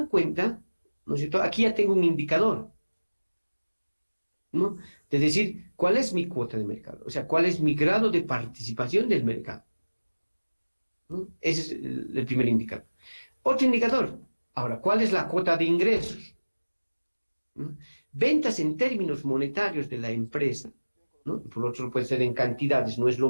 cuenta, ¿no es cierto?, aquí ya tengo un indicador, ¿no?, de decir cuál es mi cuota de mercado, o sea, cuál es mi grado de participación del mercado, ¿no? Ese es el primer indicador. Otro indicador, ahora, ¿cuál es la cuota de ingresos? ¿No? Ventas en términos monetarios de la empresa, ¿no? Por otro puede ser en cantidades, no es lo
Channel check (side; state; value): both; inverted; correlation -1.00